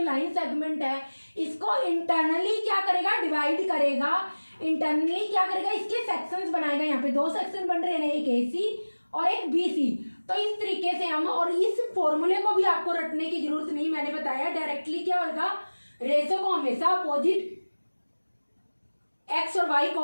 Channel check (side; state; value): both; inverted; correlation -1.00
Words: लाइन सेगमेंट है इसको इंटरनली क्या करेगा डिवाइड करेगा। इंटरनली क्या करेगा, इसके सेक्शंस बनाएगा। यहाँ पे 2 सेक्शन बन रहे हैं, एक AC और एक BC। तो इस तरीके से हम, और इस फॉर्मूले को भी आपको रटने की जरूरत नहीं, मैंने बताया डायरेक्टली क्या होगा, रेशो को हमेशा अपोजिट x और y